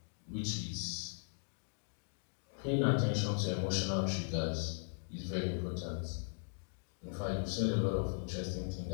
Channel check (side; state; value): right; silent; digital silence